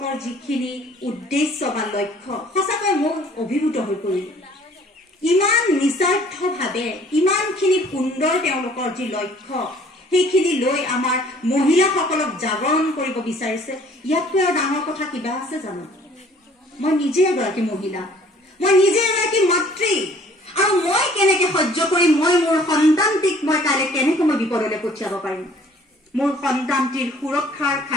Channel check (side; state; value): both; normal; correlation 0.56